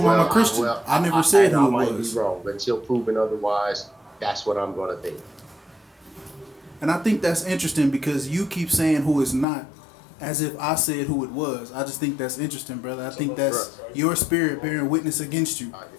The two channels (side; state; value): right; drops out; at 9.5 s